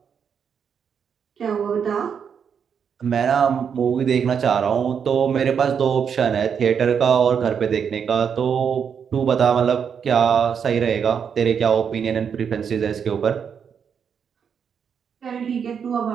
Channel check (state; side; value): quieter; left; 7.2 dB